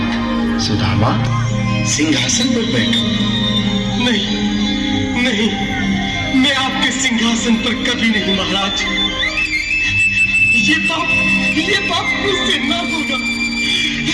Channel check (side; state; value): both; identical; correlation 1.00